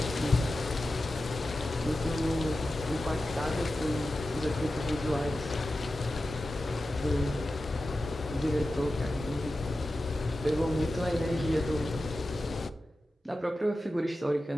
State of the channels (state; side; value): normal; both; correlation 0.93